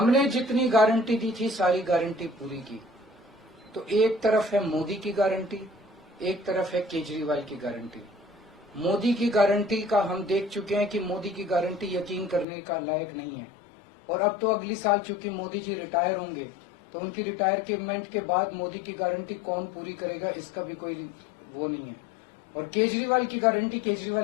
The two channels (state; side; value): drops out; right; at 12.5 s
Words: जितनी गारंटी दी थी सारी गारंटी पूरी की। तो एक तरफ है मोदी की गारंटी, एक तरफ है केजरीवाल की गारंटी। मोदी की गारंटी का हम देख चुके हैं कि मोदी की गारंटी यकीन करने का लायक नहीं है। और अब तो अगली साल चूंकि मोदी जी रिटायर होंगे, तो तो उनकी रिटायरमेंट के बाद मोदी की गारंटी कौन पूरी करेगा, इसका भी कोई वो नहीं है। और केजरीवाल की गारंटी,